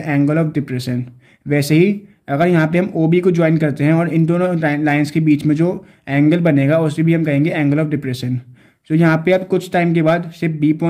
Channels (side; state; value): both; identical; correlation 1.00